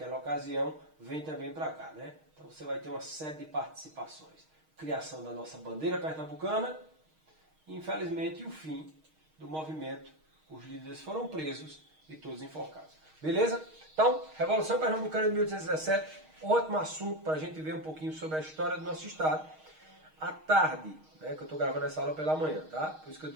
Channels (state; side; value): late; left; 6.4 ms